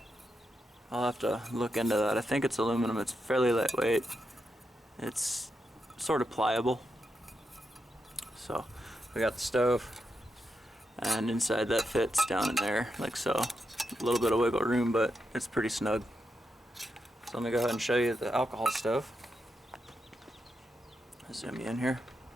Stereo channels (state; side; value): normal; both; correlation 0.85